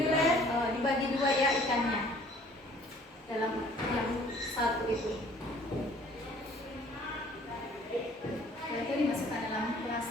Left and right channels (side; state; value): both; normal; correlation 0.55